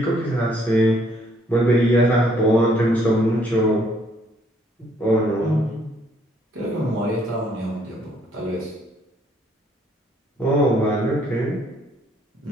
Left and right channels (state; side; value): normal; both; correlation 0.66